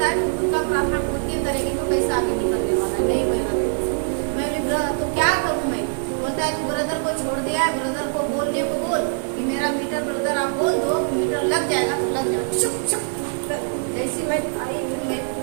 है तुम खुद का प्रार्थना खुद की करेगी तो कैसे आगे निकलने वाला है, नहीं होगा। मैं बोली तो क्या करूँ मैं? बोलता है तू ब्रदर को छोड़ दिया है, ब्रदर को बोलने को बोल कि मेरा मीटर ब्रदर आप बोल दो, मीटर लग जाएगा तो लग जाएगा। चुप चुप। जैसे मैं आई मैं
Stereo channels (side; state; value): left; silent; digital silence